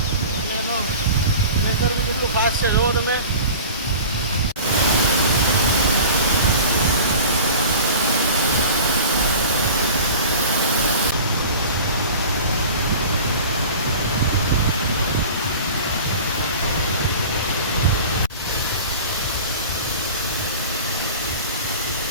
અને એનો પ્રેશર બી કેટલું ફાસ્ટ છે જોવો તમે.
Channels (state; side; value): inverted; both; correlation -0.38